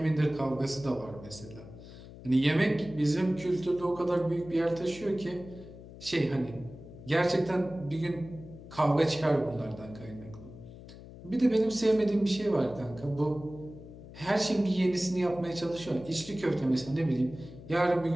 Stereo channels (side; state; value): left; noise; hum, 16 dB below the sound